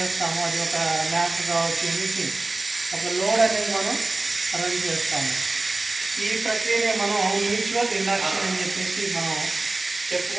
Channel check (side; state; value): left; quieter; 3.1 dB